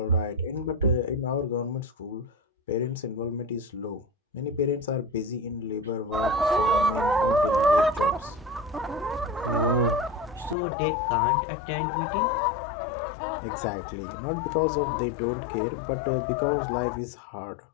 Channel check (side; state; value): right; drops out; at 10.6 s